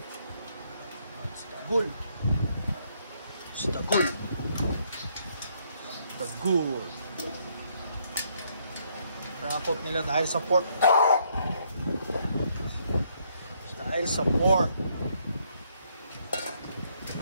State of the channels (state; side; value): inverted; both; correlation -0.71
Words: Si Dagul. the good. Rakot nila dahil sa pork. Dahil sa pork.